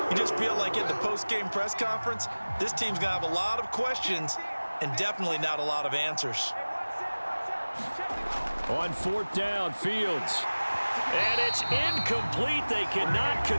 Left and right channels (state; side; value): inverted; both; correlation -1.00